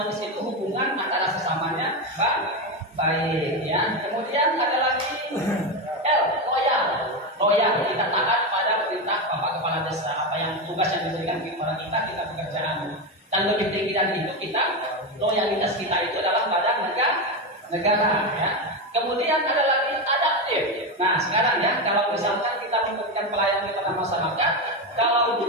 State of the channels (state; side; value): normal; both; correlation 0.13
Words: itu hubungan antara sesamanya baik ya. Kemudian ada lagi L, loyal. Loyal, kita taat pada perintah Bapak Kepala Desa. Apa yang tugas yang diberikan kepada kita pekerjaan. Dan lebih tinggi dari itu loyalitas kita itu adalah pada negara ya. Kemudian ada lagi adaptif. Nah sekarang ya, kalau misalkan kita memberikan pelayanan kepada masyarakat, kalau